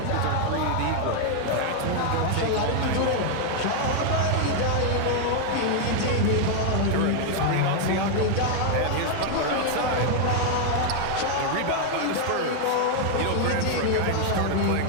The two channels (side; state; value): both; different; correlation 0.00